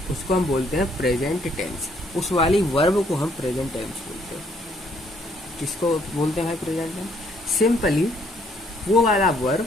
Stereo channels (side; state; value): both; normal; correlation 0.67